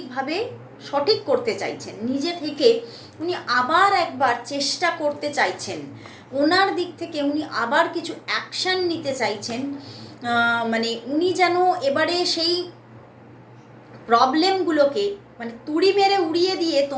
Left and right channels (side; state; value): both; identical; correlation 1.00